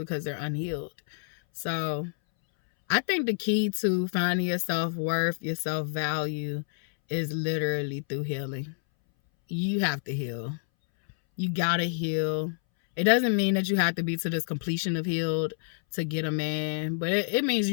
they're unhealed. So I think the key to finding your self-worth, your self-value, is literally through healing. You have to heal. You gotta heal. It doesn't mean that you have to be to this completion of healed to get a man, but it means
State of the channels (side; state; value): right; silent; 59 dB below the other